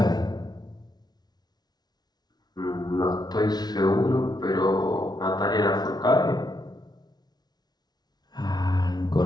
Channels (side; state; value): right; late; 0.19 ms